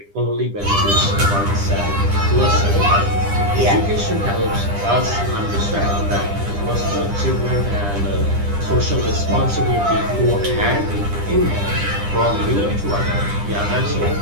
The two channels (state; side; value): late; left; 10 ms